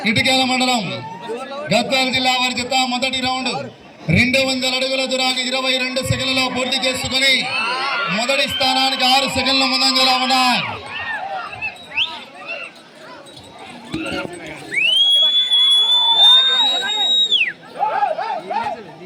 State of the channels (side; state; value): both; identical; correlation 1.00